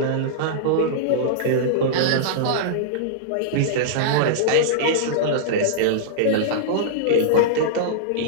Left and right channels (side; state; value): both; different; correlation -0.02